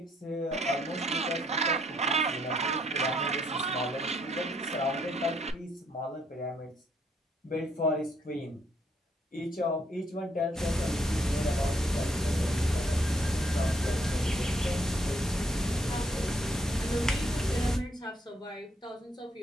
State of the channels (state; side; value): normal; both; correlation 0.70